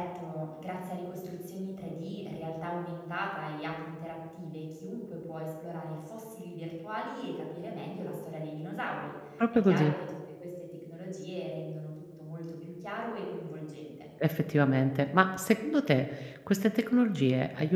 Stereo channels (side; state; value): both; identical; correlation 1.00